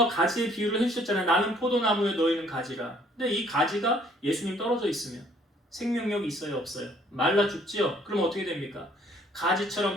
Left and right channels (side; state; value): both; normal; correlation 0.61